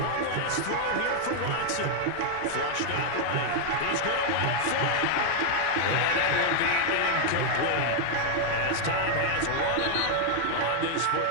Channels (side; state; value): both; different; correlation 0.00